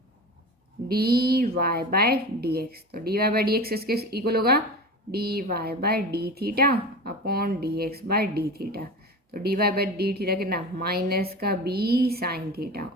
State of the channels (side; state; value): both; normal; correlation 0.30